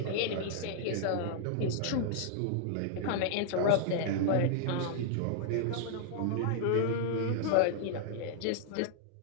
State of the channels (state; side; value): different; both; correlation -0.01